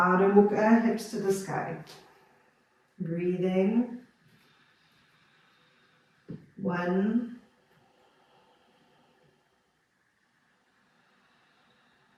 Mukha, hips to the sky. Breathing. 1,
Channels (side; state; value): both; identical; correlation 1.00